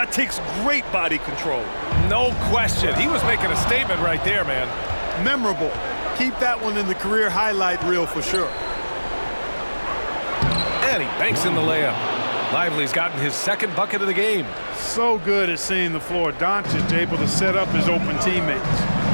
takes great body control. No question. He was making a statement right there, man. Memorable. Keep that one in the career highlight reel for sure. And he banks in the layup. Lively's gotten his second bucket of the game. So good at seeing the floor. Doncic able to set up his open teammates.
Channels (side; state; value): both; inverted; correlation -1.00